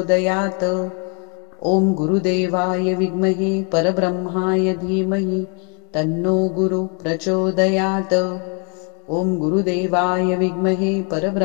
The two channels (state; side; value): quieter; right; 37.0 dB